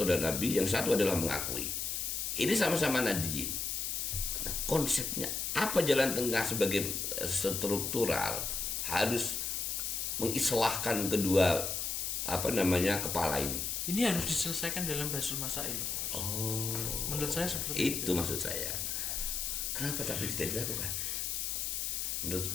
dan Nabi, yang satu adalah mengakui. Ini sama-sama nadiyin. Nah, konsepnya apa jalan tengah sebagai struktural harus mengislahkan kedua kepala ini. Ini harus diselesaikan dalam Basul Masail. Oh, menurut saya seperti itu maksud saya. Kenapa tapi tidak dilakukan?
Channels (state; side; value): noise; left; hiss, 1 dB below the sound